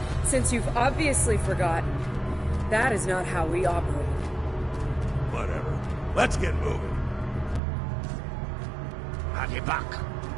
Since you've obviously forgotten, that is not how we operate. Whatever. Let's get moving. Haribach.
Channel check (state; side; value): drops out; left; at 7.6 s